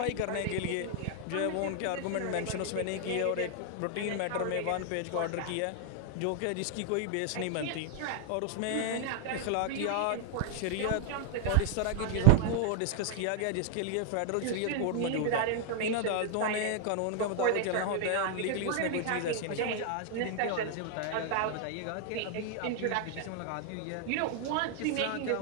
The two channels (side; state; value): both; different; correlation 0.00